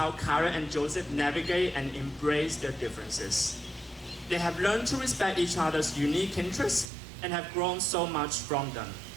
Kyra and Joseph navigate and embrace their differences. They have learned to respect each other's unique interests and have grown so much from them.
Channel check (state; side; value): drops out; left; at 6.9 s